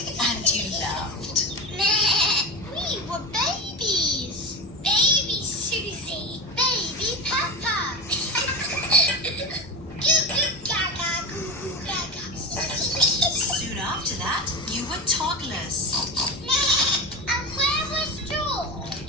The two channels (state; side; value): normal; both; correlation 0.23